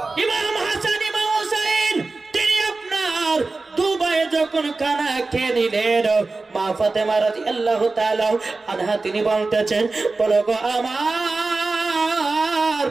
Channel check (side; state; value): left; quieter; 3.6 dB